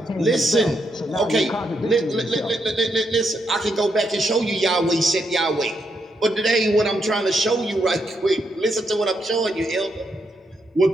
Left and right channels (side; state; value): both; normal; correlation 0.79